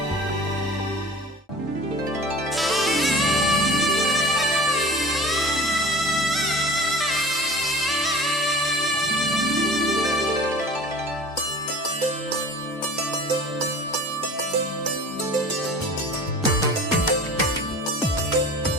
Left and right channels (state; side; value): normal; both; correlation 0.41